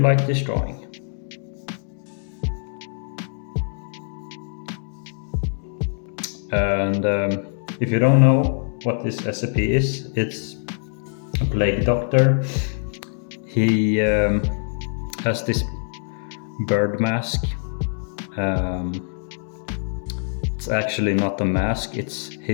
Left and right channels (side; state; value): right; silent; 63 dB below the other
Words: like this drawing. And if you don't know what this SCP is, it's a plague doctor. He has this bird mask. It's actually not a mask, it's